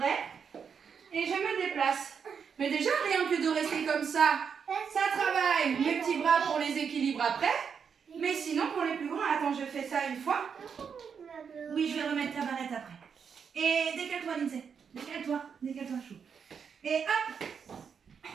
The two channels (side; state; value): left; quieter; 6.7 dB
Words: Et je me déplace. Mais déjà, rien que de rester comme ça travaille mes petits bras pour les équilibres après. Mais sinon, pour les plus grands, attends, je fais ça une fois. Oui, je vais remettre ta barrette après. Et décale-toi, Lindsay. Décale-toi chou. Et hop,